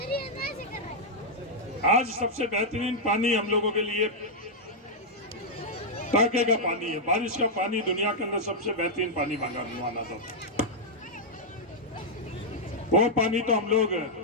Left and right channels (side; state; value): both; normal; correlation -0.05